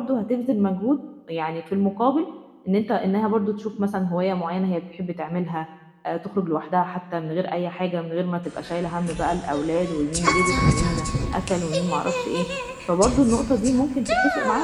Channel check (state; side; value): identical; both; correlation 1.00